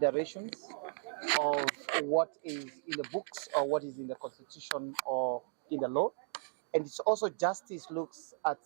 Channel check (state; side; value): silent; left; 54 dB below the other